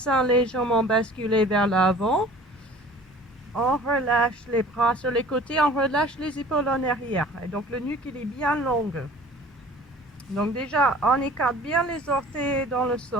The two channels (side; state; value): both; normal; correlation 0.47